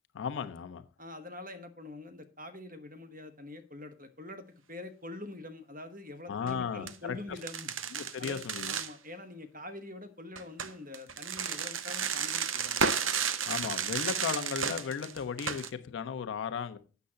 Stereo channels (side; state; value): both; normal; correlation -0.02